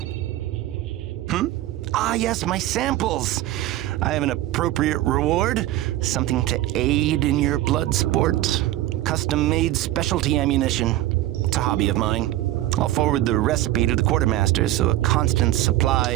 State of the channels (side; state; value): left; quieter; 15.0 dB